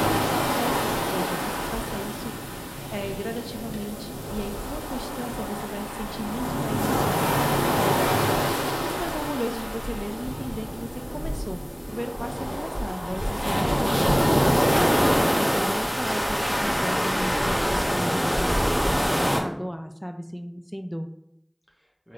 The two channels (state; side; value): identical; both; correlation 1.00